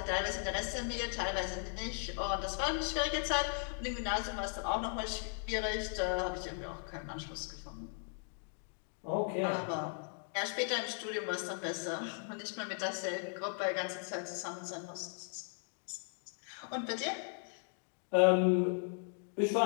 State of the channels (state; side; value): silent; right; 53 dB below the other